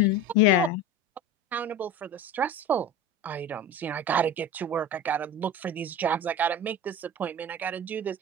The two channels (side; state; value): both; normal; correlation 0.30